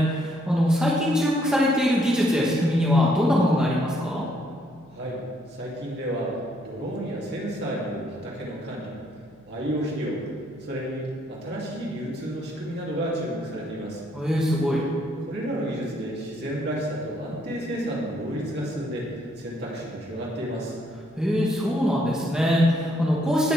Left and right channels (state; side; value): noise; right; hum, 28 dB below the sound